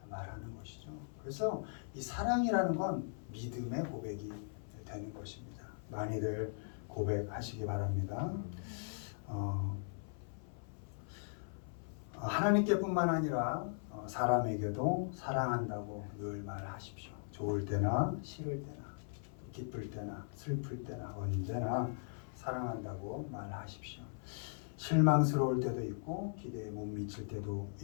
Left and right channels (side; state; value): right; silent; 52 dB below the other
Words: 말하는 것이죠. 그래서 이 사랑이라는 건 믿음의 고백이 되는 것입니다. 많이들 고백하시기 바랍니다. 하나님께뿐만 아니라 사람에게도 사랑한다고 늘 말하십시오. 좋을 때나 싫을 때나 기쁠 때나 슬플 때나 언제나 사랑한다고 말하십시오. 실망스러울 때도 있고 기대에 못 미칠 때도